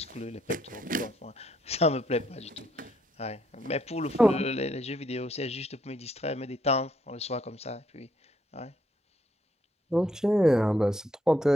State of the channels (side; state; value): both; normal; correlation 0.72